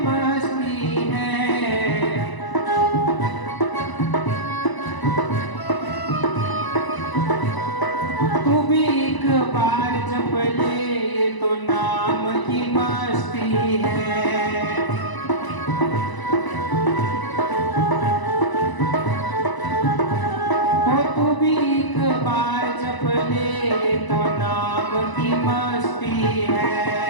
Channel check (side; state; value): right; late; 1.0 ms